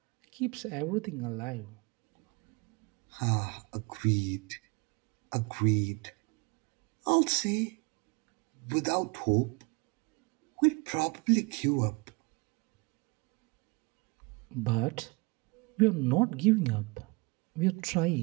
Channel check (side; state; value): left; quieter; 28.3 dB